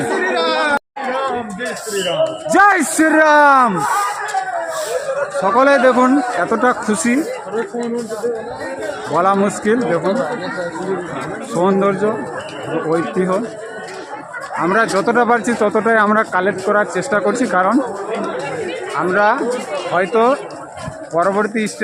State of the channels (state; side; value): identical; both; correlation 1.00